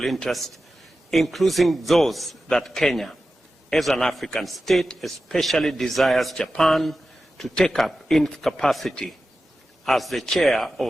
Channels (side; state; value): both; normal; correlation 0.93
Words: interest, including those that Kenya, as an African state, especially desires Japan to take up in capacity as the chair